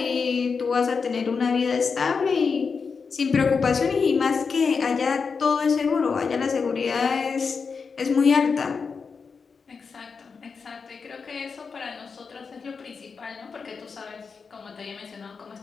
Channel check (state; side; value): quieter; right; 5.3 dB